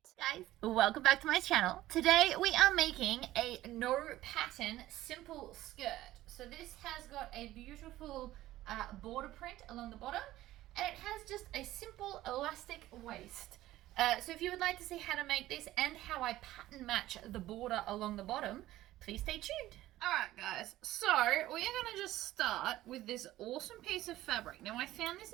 Guys, welcome back to my channel. Today we are making a no pattern simple skirt. So this has got a beautiful border print along the bottom, and it has just a simple elastic waist. So if you would like to see how to make this and how I pattern match the border along the bottom, please stay tuned. Alright guys, so we are going to just start with this awesome piece of fabric. Now I found this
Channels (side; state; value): left; quieter; 15.4 dB